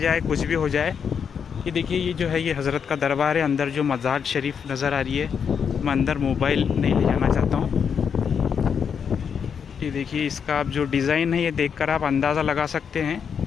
कुछ भी हो जाए। ये देखिए, ये जो है ये हज़रत का दरबार है। अंदर जो मज़ार शरीफ नज़र आ रही है, मैं अंदर मोबाइल नहीं ले जाना चाहता हूँ। ये देखिए, इसका आप जो डिज़ाइन है ये देखकर आप अंदाज़ा लगा सकते हैं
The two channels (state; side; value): quieter; right; 7.0 dB